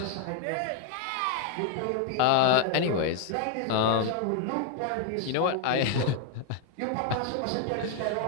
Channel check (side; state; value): both; different; correlation 0.00